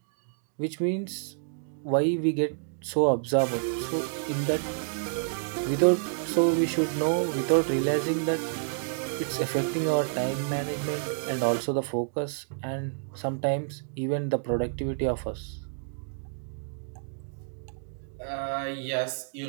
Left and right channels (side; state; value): left; silent; digital silence